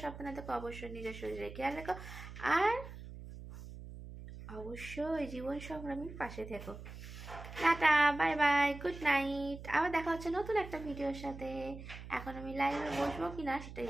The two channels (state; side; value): noise; right; hum, 12 dB below the sound